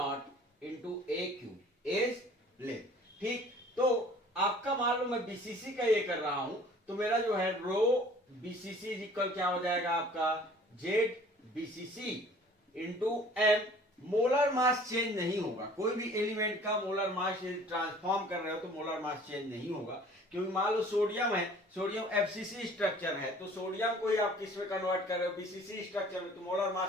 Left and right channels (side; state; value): both; normal; correlation 0.51